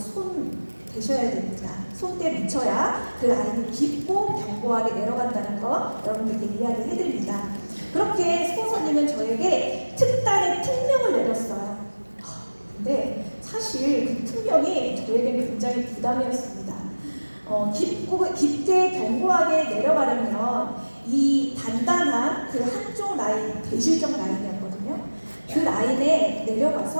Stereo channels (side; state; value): both; inverted; correlation -1.00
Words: 대셔야 됩니다. 손때 묻혀야 그 라인이 깊고 견고하게 내려간다는 거 여러분들께 이야기를 해드립니다. 그렇게 스폰서님은 저에게 특단의 특명을 내렸어요. 근데 사실 그 특명이 저에게는 굉장히 부담이었습니다. 깊게 견고하게 내려가려면 이 단단한 그 한쪽 라인, 대실적 라인이었거든요. 그 라인에